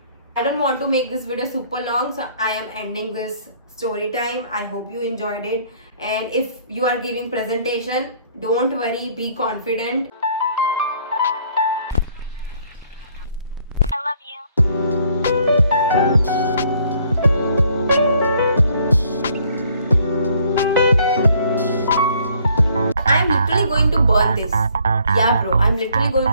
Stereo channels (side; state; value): both; inverted; correlation -0.62